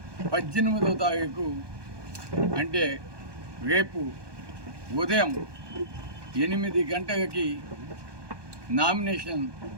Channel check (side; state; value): left; late; 1.2 ms